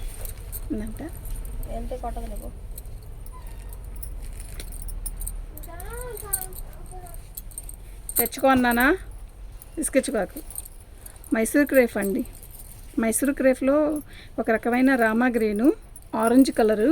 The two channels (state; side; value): identical; both; correlation 1.00